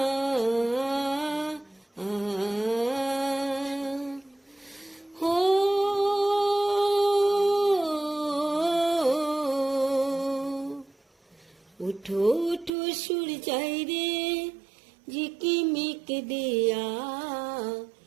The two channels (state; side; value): drops out; left; at 12.7 s